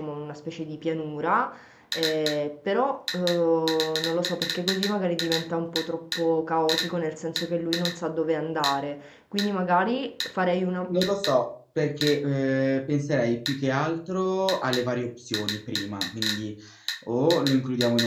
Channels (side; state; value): both; identical; correlation 1.00